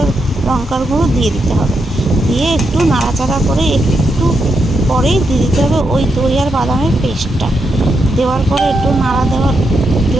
লঙ্কার গুঁড়ো দিয়ে দিতে হবে। দিয়ে একটু নাড়াচাড়া করে একটু পরেই দিয়ে দিতে হবে ওই দই আর বাদামের পেস্টটা। দেওয়ার পরে একটু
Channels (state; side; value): normal; both; correlation 0.83